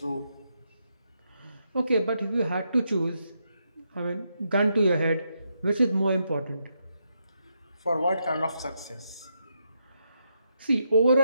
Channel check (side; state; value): both; inverted; correlation -0.81